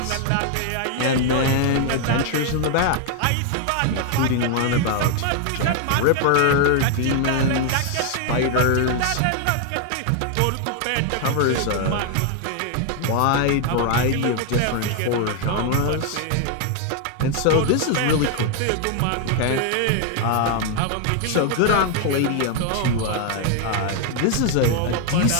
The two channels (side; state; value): both; different; correlation 0.00